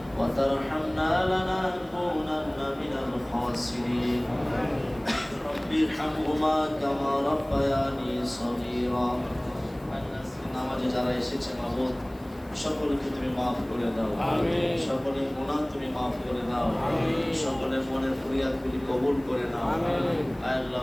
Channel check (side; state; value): left; noise; hiss, 29 dB below the sound